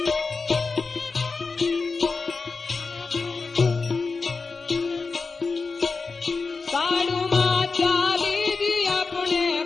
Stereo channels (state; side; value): quieter; right; 4.4 dB